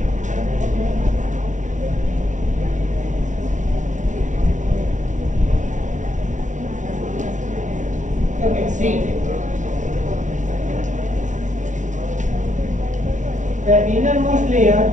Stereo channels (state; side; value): late; left; 0.36 ms